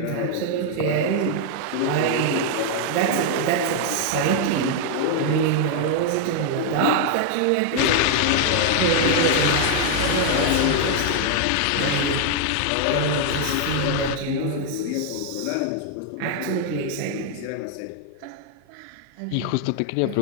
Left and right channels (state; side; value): different; both; correlation 0.00